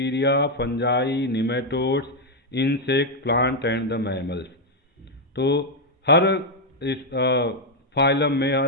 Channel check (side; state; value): both; normal; correlation 0.01